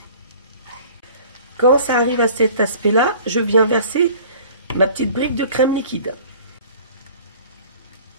Quand ça arrive à cet aspect-là, je viens verser ma petite brique de crème liquide.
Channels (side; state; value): both; inverted; correlation -0.46